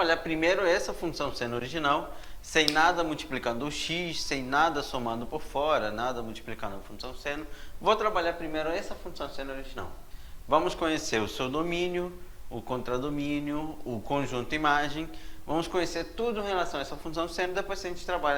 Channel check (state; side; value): identical; both; correlation 1.00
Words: primeiro essa função seno original, sem nada multiplicando o x, sem nada somando por fora, nada multiplicando a função seno. Vou trabalhar primeiro essa função seno original. Vamos conhecer o seu domínio, o contradomínio, o conjunto imagem. Vamos conhecer tudo em relação a essa função seno, depois a gente trabalha